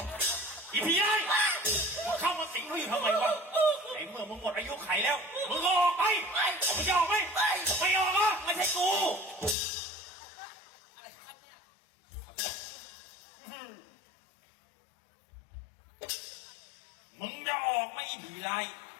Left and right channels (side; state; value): right; drops out; at 9.6 s